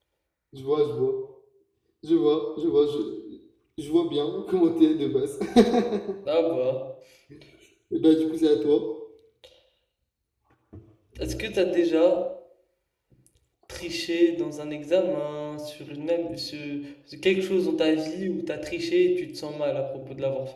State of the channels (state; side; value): identical; both; correlation 1.00